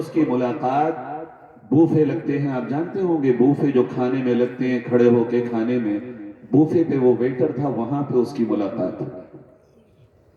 کی ملاقات بوفے لگتے ہیں، آپ جانتے ہوں گے بوفے جو کھانے میں لگتے ہیں کھڑے ہو کے کھانے میں، بوفے پہ وہ ویٹر تھا، وہاں پہ اس کی ملاقات ہوئی،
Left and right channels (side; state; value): both; identical; correlation 1.00